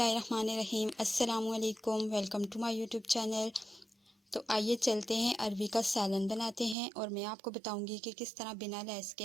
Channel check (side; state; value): left; drops out; at 6.8 s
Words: अस्सलामु अलैकुम। Welcome to my YouTube channel. तो आइए चलते हैं अरवी का सालन बनाते हैं, और मैं आपको बताऊंगी कि किस तरह बिना लैस के